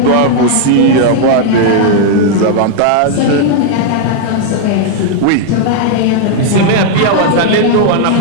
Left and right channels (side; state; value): both; different; correlation 0.00